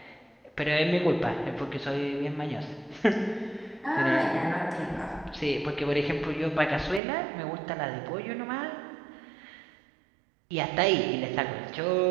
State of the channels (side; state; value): left; drops out; at 7.0 s